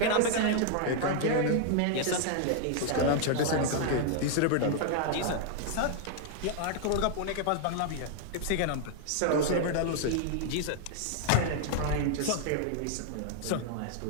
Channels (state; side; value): different; both; correlation 0.00